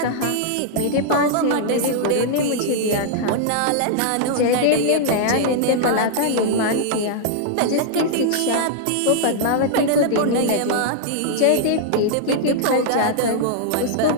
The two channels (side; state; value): both; different; correlation -0.01